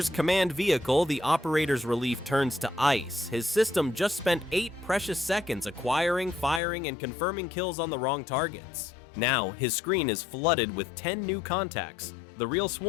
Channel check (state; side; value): drops out; right; at 6.6 s